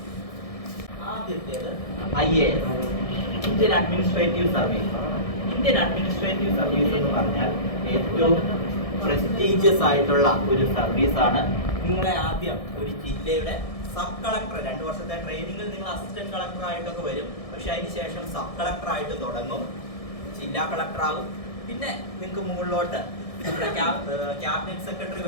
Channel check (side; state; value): right; late; 1.6 ms